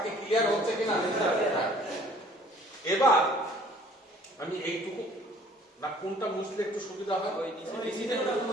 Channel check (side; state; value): both; normal; correlation 0.55